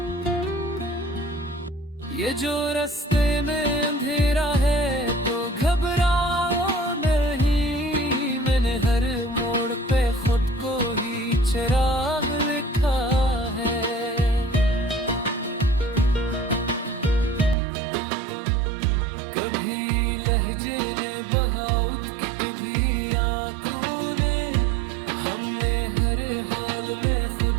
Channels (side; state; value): left; drops out; at 17.6 s